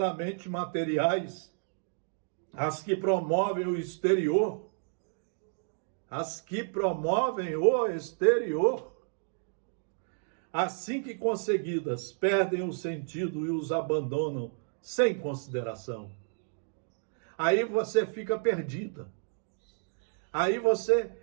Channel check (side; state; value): left; silent; digital silence